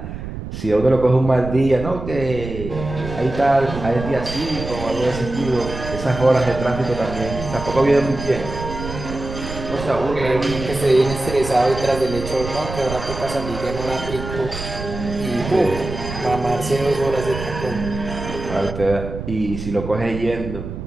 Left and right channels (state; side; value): noise; right; rumble, 8 dB below the sound